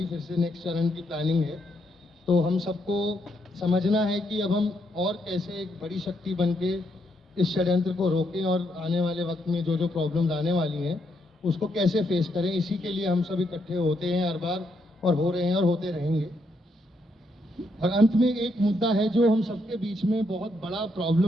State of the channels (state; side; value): normal; both; correlation 0.77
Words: फिर से नेक्स्ट चरण की प्लानिंग है। तो हम सबको समझना है कि अब हम और कैसे एक बड़ी शक्ति बन के इस षड्यंत्र को रोकें और आने वाले वक्त में जो जो प्रॉब्लम्स आने वाली हैं उसको कैसे फेस करें। इसी के लिए हम सब इकट्ठे होते हैं हर बार और हो रहे हैं और होते रहेंगे। और अंत में एक मुद्दा है जो हम सबके बीच में बहुत बड़ा